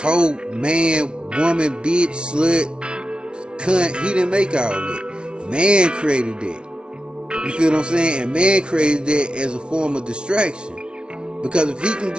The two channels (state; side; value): late; left; 0.057 ms